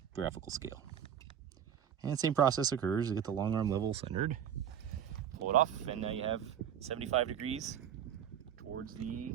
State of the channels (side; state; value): left; quieter; 9.2 dB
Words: scale. And same process occurs. You get the long arm level centered, pull it off, and now you have 75 degrees towards the